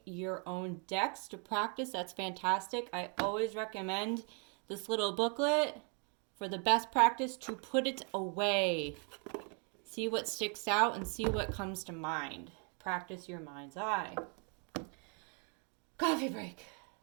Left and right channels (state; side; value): quieter; left; 38.1 dB